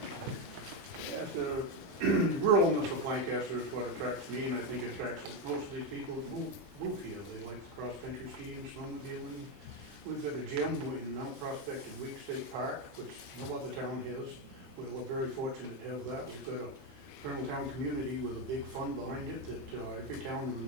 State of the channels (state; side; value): normal; both; correlation 0.08